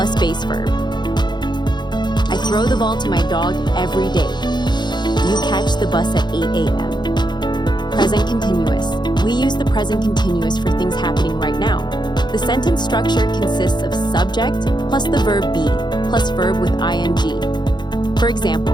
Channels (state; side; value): late; right; 0.21 ms